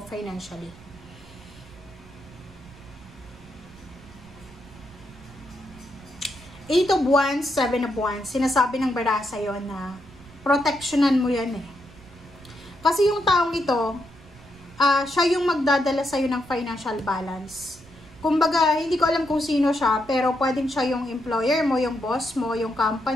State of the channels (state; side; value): noise; right; rumble, 22 dB below the sound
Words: financially. Eight of Wands, Seven of Wands. Sinasabi ng baraha sa'yo na protectionan mo yan eh. Kasi yung taong ito, siya yung magdadala sa'yo ng financial balance. Kumbaga, hindi ko alam kung sino siya, pero pwedeng siya yung employer mo, yung boss mo, yung